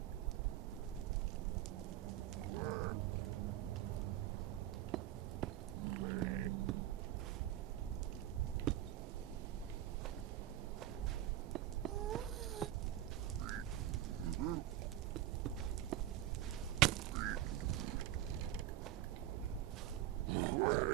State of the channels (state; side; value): quieter; left; 13.0 dB